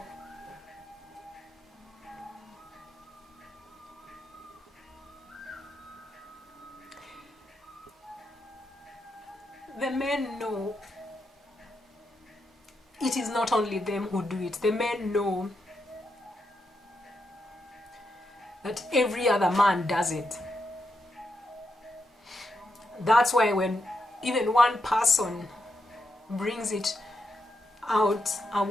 The men know it is not only them who do it. The men know that every other man does it. That's why when even one person brings it out, a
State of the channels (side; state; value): both; normal; correlation 0.83